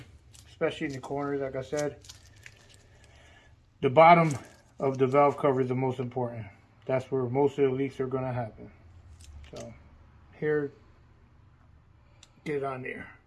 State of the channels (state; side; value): identical; both; correlation 1.00